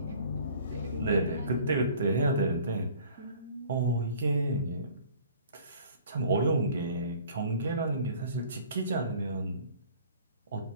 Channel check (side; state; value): both; inverted; correlation -0.50